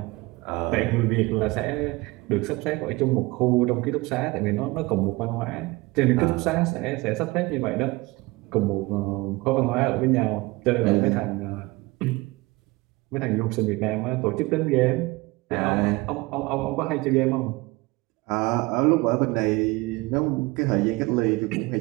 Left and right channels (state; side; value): quieter; left; 22.6 dB